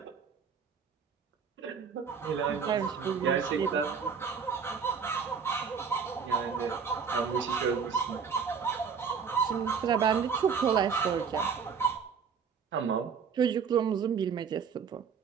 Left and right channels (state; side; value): quieter; left; 6.3 dB